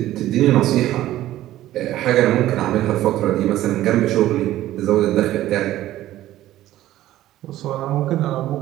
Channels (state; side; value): quieter; left; 14.3 dB